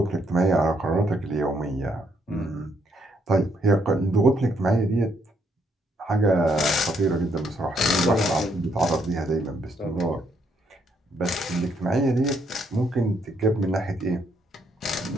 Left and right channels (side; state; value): both; normal; correlation 0.72